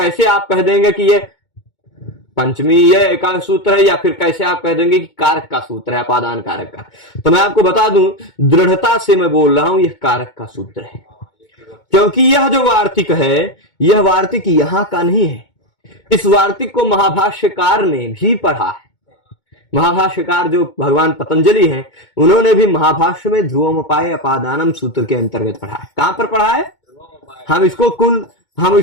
आप कह देंगे कि ये पंचमी ये का सूत्र है, या फिर कैसे आप कह देंगे कि कारक का सूत्र है, अपादान कारक का? तो मैं आपको बता दूं, दृढ़ता से मैं बोल रहा हूं यह कारक का सूत्र है, क्योंकि यह जो वार्तिक है यह वार्तिक यहां का नहीं है। इस वार्तिक को महाभाष्यकार ने भी पढ़ा है। महाभाष्यकार जो भगवान पतंजलि हैं, उन्होंने भी महाभाष्य में ध्रुवमपाय अपादानम सूत्र के अंतर्गत पढ़ा है। कहां पर पढ़ा है? हम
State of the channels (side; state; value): right; late; 2.2 ms